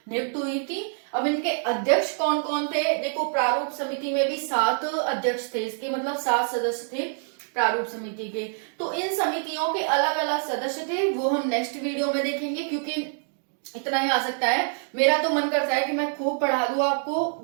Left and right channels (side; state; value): left; silent; 61 dB below the other